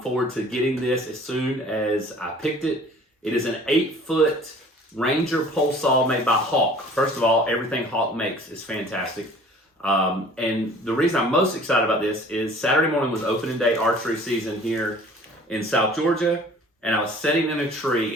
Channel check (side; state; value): both; normal; correlation 0.49